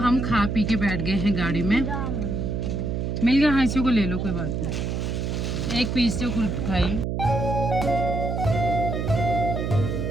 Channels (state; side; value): noise; right; hum, 2 dB below the sound